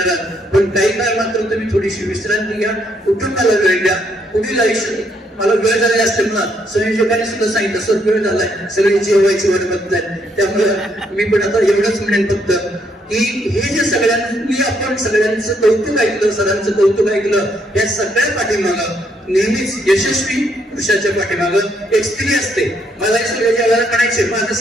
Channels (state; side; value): normal; both; correlation 0.73